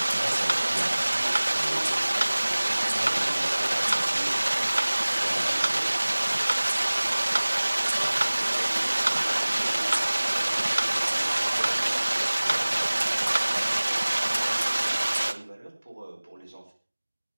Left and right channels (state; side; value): inverted; both; correlation -1.00